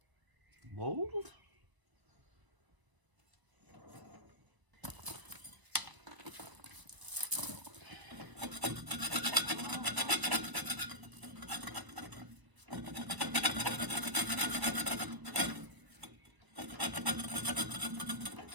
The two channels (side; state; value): left; late; 1.0 ms